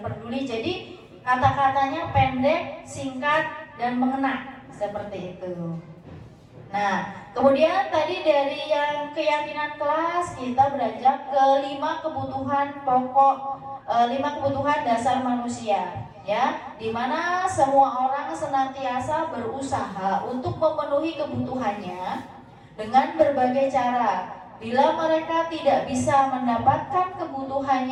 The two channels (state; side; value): identical; both; correlation 1.00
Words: peduli. Jadi kata-katanya pendek, singkat, dan mengena, seperti itu. Nah, kemudian tadi dari yang keyakinan kelas kita beranjak ke 5 kebutuhan pokok, 5 kebutuhan dasar manusia, ya, dimana semua orang senantiasa berusaha untuk memenuhi kebutuhannya dengan berbagai cara. Bila mereka tidak bisa mendapatkan